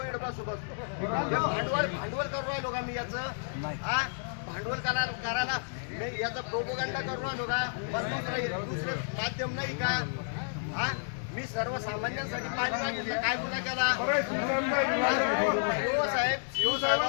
इकडे बसू बसतो भांडवल करू राहिलो का मी याचं भांडवल करायला मी याचा प्रोपोगंडा करू राहिलो का दुसरं माध्यम नाही का मी सर्वसामान्यांसाठी पाणी मागितलं काय गुन्हा केला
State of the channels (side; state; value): right; silent; digital silence